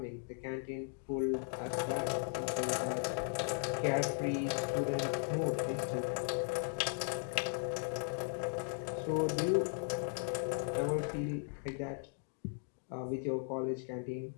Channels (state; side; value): silent; right; 53 dB below the other